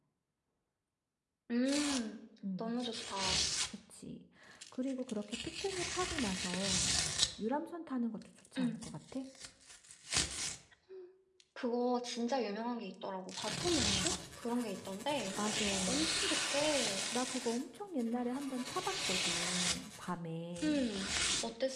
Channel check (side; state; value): both; identical; correlation 1.00